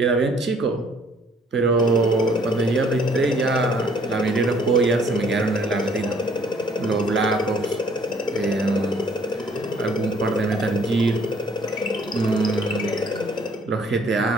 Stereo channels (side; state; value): both; normal; correlation 0.61